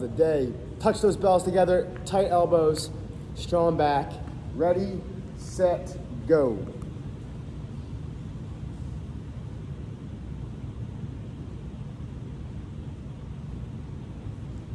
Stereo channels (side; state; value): both; identical; correlation 1.00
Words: day. Touch those bells together, tight elbows, strong back. Ready, set, go.